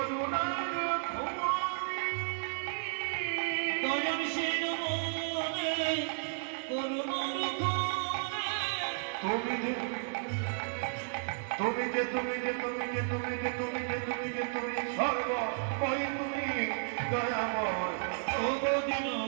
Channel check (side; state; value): left; silent; digital silence